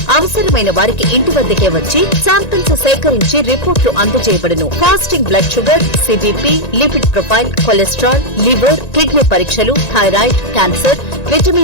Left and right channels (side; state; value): right; late; 1.9 ms